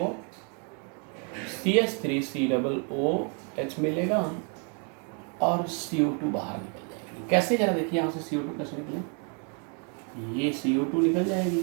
CH3COOH मिलेगा और CO2 बाहर निकल जाएगी। कैसे, जरा देखिए यहाँ से CO2 कैसे निकले, ये CO2 निकल जाएगी,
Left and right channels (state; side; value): quieter; left; 39.8 dB